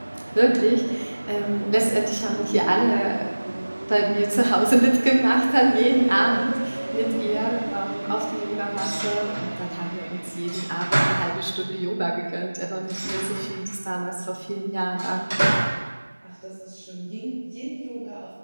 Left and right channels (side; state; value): both; inverted; correlation -1.00